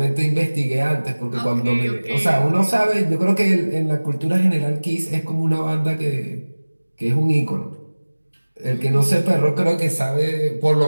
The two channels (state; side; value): inverted; both; correlation -1.00